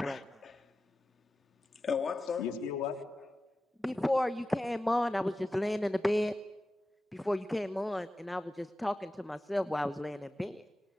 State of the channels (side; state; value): both; normal; correlation 0.94